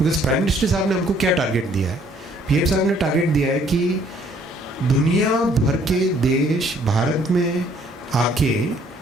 बिकॉज प्राइम मिनिस्टर साहब ने हमको क्या टारगेट दिया है, PM साहब ने टारगेट दिया है कि दुनिया भर के देश भारत में आके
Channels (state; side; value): normal; both; correlation 0.62